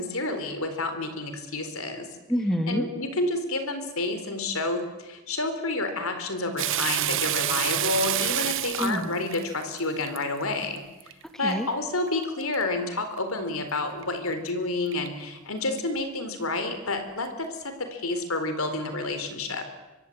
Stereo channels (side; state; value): both; normal; correlation -0.01